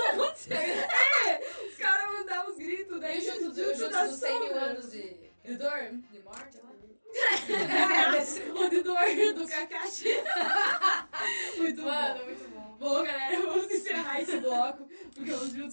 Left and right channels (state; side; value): inverted; both; correlation -1.00